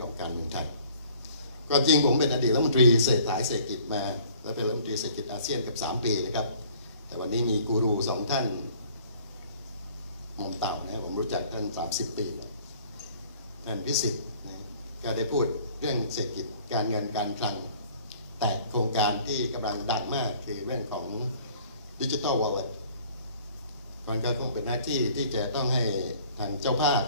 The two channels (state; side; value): inverted; both; correlation -0.54